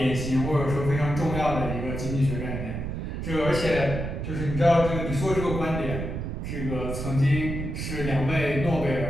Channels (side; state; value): right; noise; rumble, 4 dB below the sound